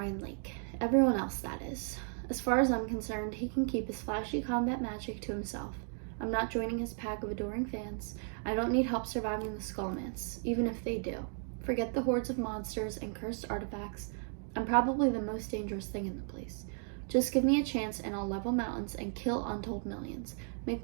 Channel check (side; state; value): left; silent; 54 dB below the other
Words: Lake. Everyone else, that is. As far as I'm concerned, he can keep his flashy combat magic to himself. I'm not joining his pack of adoring fans. I don't need help surviving the Scholomance, even if they do. Forget the hordes of monsters and cursed artifacts. I'm probably the most dangerous thing in the place. Just give me a chance and I'll level mountains and kill untold millions. Make